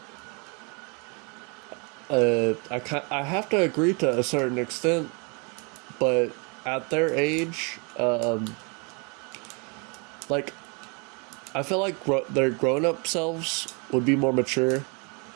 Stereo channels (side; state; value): left; quieter; 33.0 dB